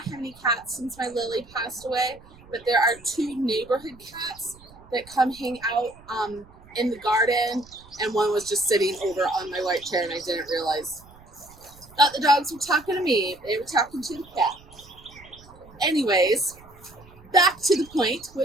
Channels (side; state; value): right; noise; rumble, 23 dB below the sound